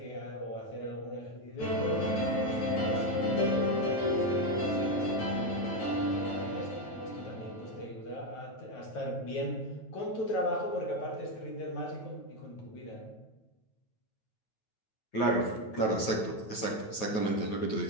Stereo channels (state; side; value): late; right; 9.2 ms